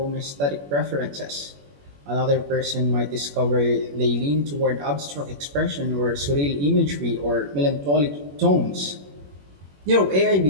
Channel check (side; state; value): left; late; 21 ms